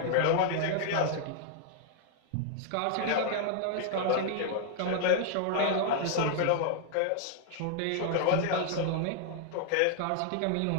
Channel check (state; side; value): different; both; correlation -0.01